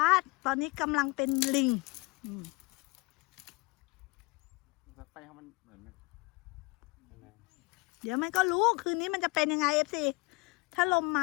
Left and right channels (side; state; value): right; quieter; 26.6 dB